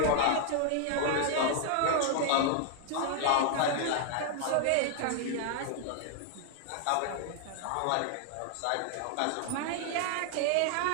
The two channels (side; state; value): both; different; correlation 0.00